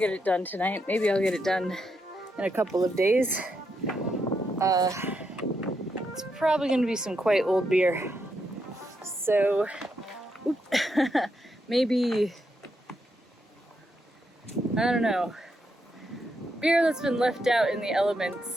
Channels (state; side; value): normal; both; correlation 0.81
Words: it done tonight, maybe I'll get it done in a couple of days, it's probably going to be some quite old beer. So maybe, I don't know, beer that's been left out in the